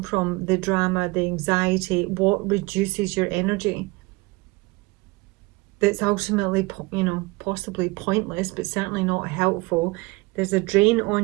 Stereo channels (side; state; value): left; quieter; 23.6 dB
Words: from, the drama, the anxiety, what reduces your energy. That's ultimately, you know, possibly pointless, but certainly not helpful. There's a drain